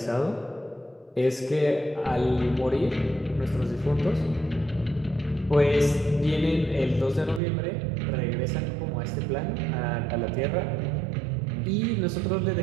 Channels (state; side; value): drops out; left; at 7.4 s